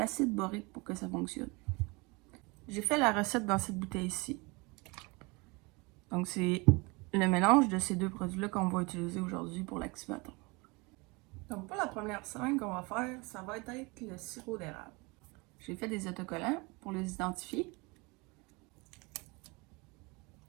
borique pour que ça fonctionne. J'ai fait la recette dans cette bouteille-ci. Donc, c'est le mélange de ces deux produits-là qu'on va utiliser aujourd'hui pour l'activateur. Donc, pour la première slime qu'on va faire, ça va être le sirop d'érable. J'ai fait des autocollants pour les identifier.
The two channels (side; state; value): left; quieter; 26.8 dB